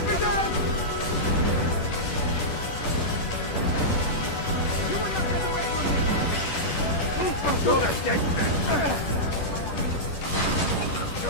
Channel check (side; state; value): right; late; 10 ms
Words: begun! You will not get away from me! You're a dead man!